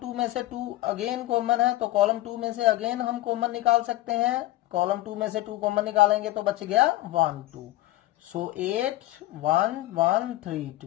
में से 2 अगेन कॉमन है तो कॉलम 2 में से अगेन हम कॉमन निकाल सकते हैं, कॉलम 2 में से 2 कॉमन निकालेंगे तो बच गया 1 2। सो 8 1 1 3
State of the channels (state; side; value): quieter; right; 16.5 dB